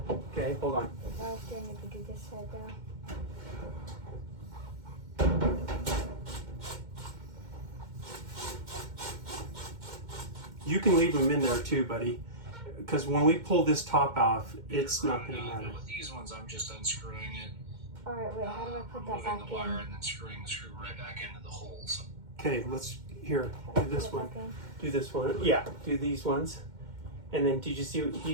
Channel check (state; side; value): late; left; 2.1 ms